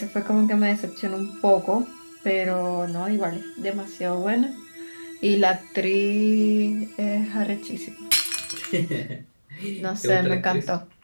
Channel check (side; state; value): both; inverted; correlation -1.00